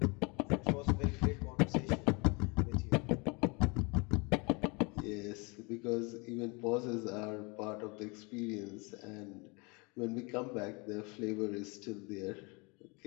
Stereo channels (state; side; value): quieter; right; 29.4 dB